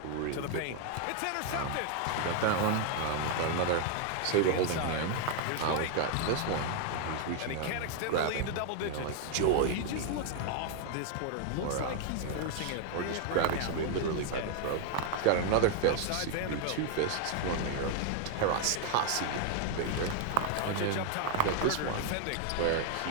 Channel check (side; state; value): both; different; correlation 0.00